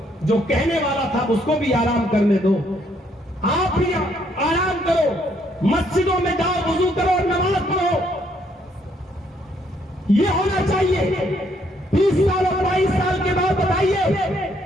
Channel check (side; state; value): both; normal; correlation 0.70